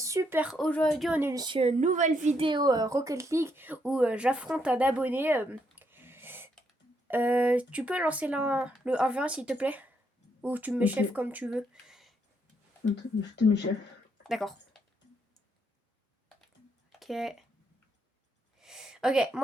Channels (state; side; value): normal; both; correlation 0.76